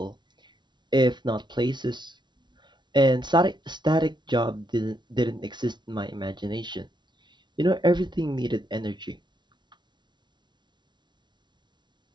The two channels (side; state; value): left; late; 0.22 ms